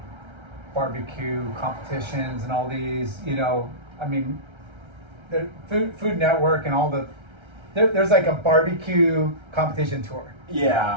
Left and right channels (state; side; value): late; left; 1.3 ms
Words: barbecue competitions and all these. You know, I mean, the Food Network and all the. There's like a barbecue competition tour.